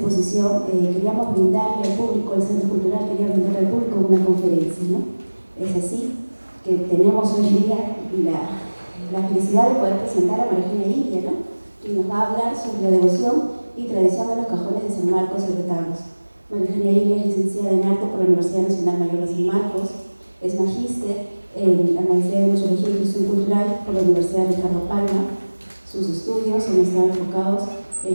queríamos brindarle al público, el Centro Cultural quería brindarle al público una conferencia, ¿no? Es así que tenemos hoy día la felicidad de poder presentar a María Eugenia Ilia, ¿no? Que nos va a hablar sobre la devoción y tradición de los cajones de San Marcos y retablos. María Eugenia Ilia es licenciada en arte por la Universidad Nacional Mayor de San Marcos, es magíster en la Maestría de Museología y Gestión Cultural por la Universidad de Ricardo Palma. Sus estudios han estado enfocados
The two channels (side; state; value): both; inverted; correlation -1.00